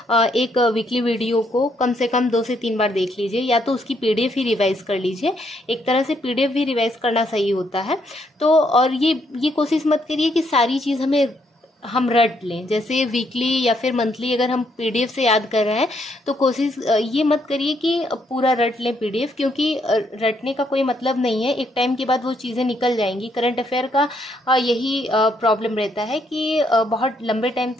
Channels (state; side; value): normal; both; correlation 0.73